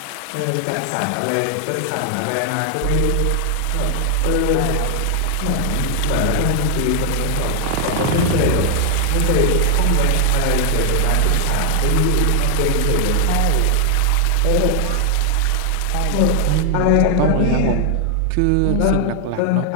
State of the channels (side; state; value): both; different; correlation 0.00